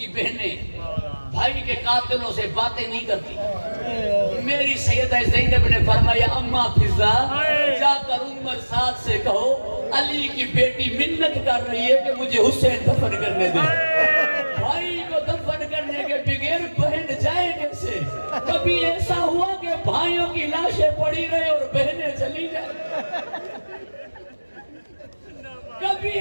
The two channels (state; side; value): inverted; both; correlation -1.00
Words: بہنیں بھائی کے قاتلوں سے باتیں نہیں کرتی۔ میری سیدہ زینب نے فرمایا اماں فضا جا کر عمر سعد سے کہو علی کی بیٹی منت کر رہی ہے کہ مجھے حسین دفن کرنے دے۔ بھائی کو دفن کرنے کے بغیر بہن جائے کیسے؟ کبھی ایسا ہوا کہ بھائیوں کی لاشیں پڑی رہے اور بہنیں چلی جائیں؟ کبھی